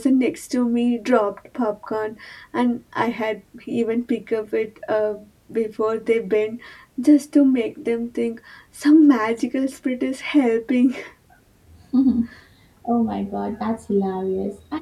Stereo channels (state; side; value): identical; both; correlation 1.00